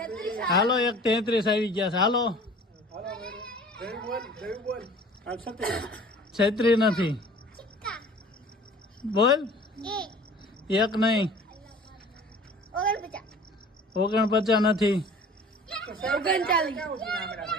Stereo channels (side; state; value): both; normal; correlation 0.46